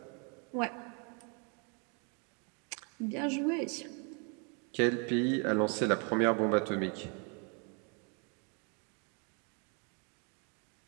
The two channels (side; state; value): left; quieter; 36.2 dB